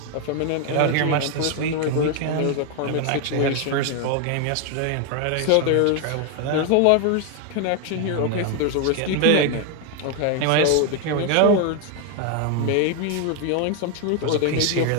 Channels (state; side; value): different; both; correlation 0.01